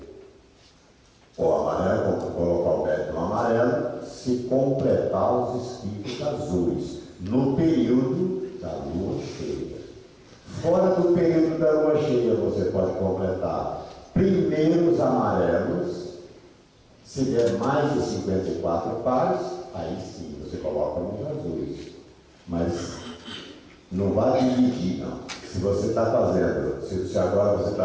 o amarelo, colocar o método no amarelo, se completar os esquifes azuis no período da lua cheia. Fora do período da lua cheia, você pode completar primeiro os amarelos. Se der mais de 54 pares, aí sim você coloca nos azuis. Mas não vai dividir, não. Se você está fazendo, se agora você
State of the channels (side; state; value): both; identical; correlation 1.00